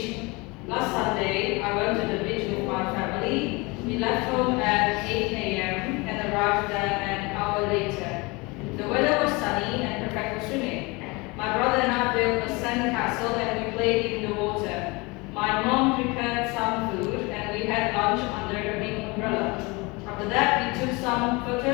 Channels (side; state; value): right; quieter; 25.8 dB